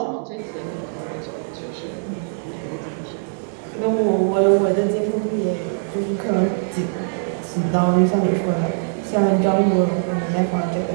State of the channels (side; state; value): left; silent; digital silence